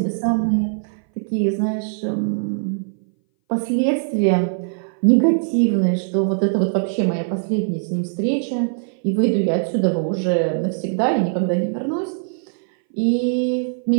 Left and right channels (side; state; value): left; silent; 61 dB below the other